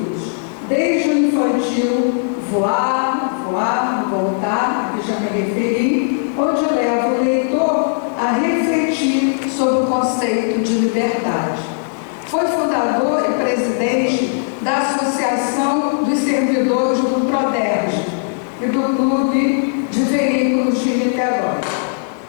desde o infantil Voar, Voar, Voltar, a que já me referi, onde leva o leitor a refletir sobre o conceito de liberdade. Foi fundador e presidente da Associação dos Servidores do Proderj e do Clube de Veículos de Niterói.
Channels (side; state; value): right; silent; 67 dB below the other